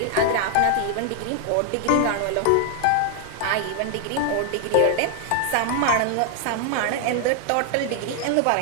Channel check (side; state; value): both; different; correlation 0.00